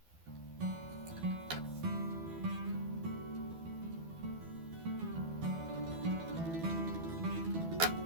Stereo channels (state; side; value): late; left; 12 ms